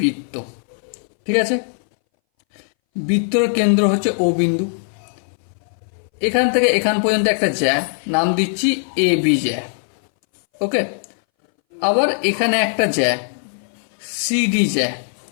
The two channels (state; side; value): silent; right; 62 dB below the other